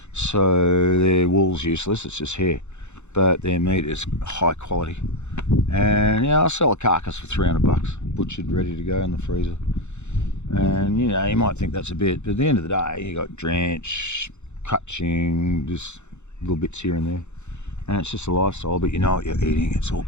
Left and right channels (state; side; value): late; right; 0.83 ms